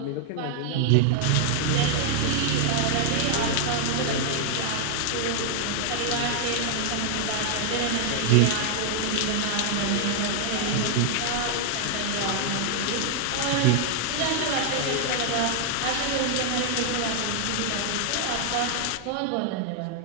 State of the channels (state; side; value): different; both; correlation 0.00